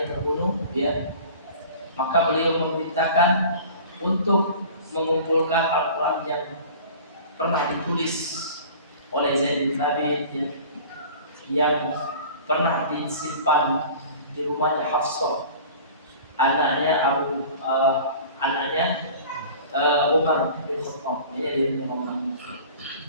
terbunuh, maka beliau memerintahkan untuk mengumpulkan Al-Quran yang pernah ditulis oleh Zaid bin Thabit, yang pernah disimpan di rumahnya Hafsah, anaknya Umar bin Khattab. Ini dia Umar.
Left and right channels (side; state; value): both; inverted; correlation -0.42